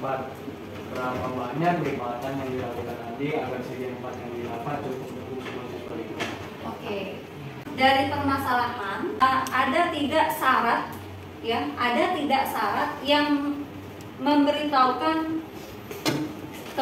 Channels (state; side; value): identical; both; correlation 1.00